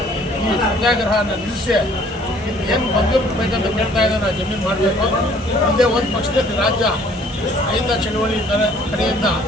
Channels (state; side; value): normal; both; correlation 0.57